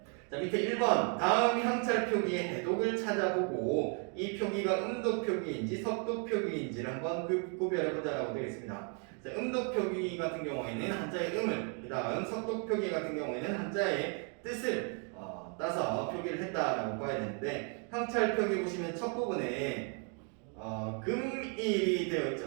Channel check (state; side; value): quieter; left; 40.0 dB